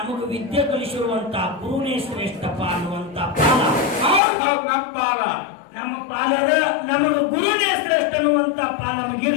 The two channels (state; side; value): drops out; right; at 4.2 s